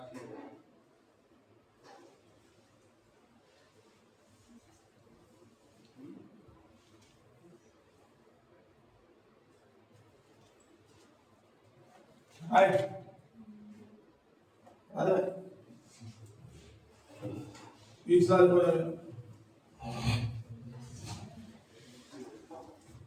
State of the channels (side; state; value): both; identical; correlation 1.00